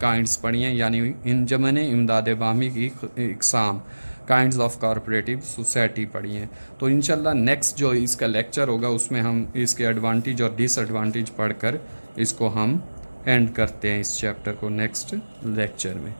پڑھی ہیں یعنی انجمن امداد باہمی کی اقسام، کائنڈز آف کارپوریٹو سوسائٹی پڑھی ہیں. تو انشاءاللہ نیکسٹ جو اس کا لیکچر ہوگا اس میں ہم اس کے ایڈوانٹیج اور ڈس ایڈوانٹیج پڑھ کر اس کو ہم اینڈ کرتے ہیں اس چیپٹر کو نیکسٹ لیکچر میں.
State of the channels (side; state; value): both; inverted; correlation -1.00